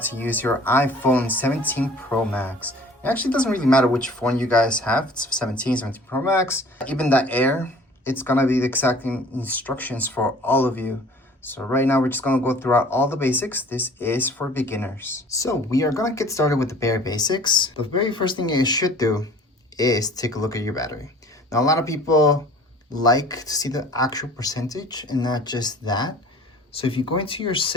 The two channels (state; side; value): normal; both; correlation 0.48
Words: use your iPhone 17 Pro Max. It actually doesn't really matter which phone you guys have. It's 17 Pro Max, even the Air. It's gonna be the exact instructions for all of you. So right now we're just gonna go throughout all the basics. This is for beginners. So we are gonna get started with the bare basics. The very first thing you should do is take a look at your battery. Now a lot of people like to see the actual percentage and not just that. So if you go into your